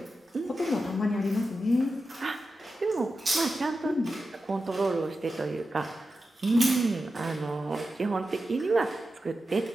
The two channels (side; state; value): both; normal; correlation 0.91